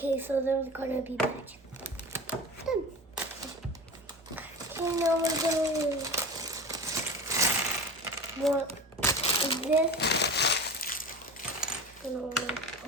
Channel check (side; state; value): both; normal; correlation 0.33